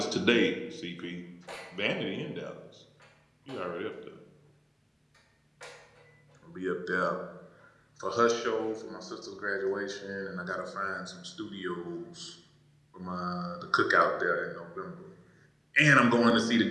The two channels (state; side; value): identical; both; correlation 1.00